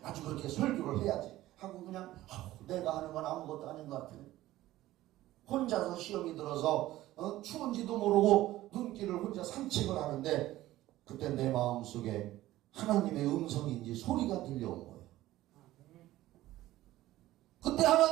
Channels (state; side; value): quieter; left; 15.7 dB